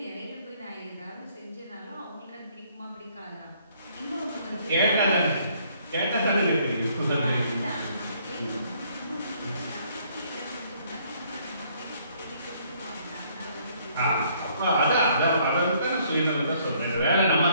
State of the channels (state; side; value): inverted; both; correlation -0.64